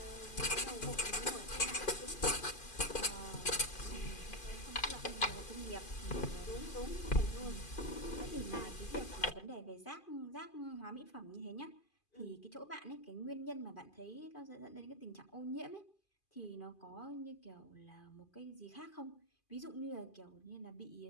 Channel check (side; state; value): right; late; 2.5 ms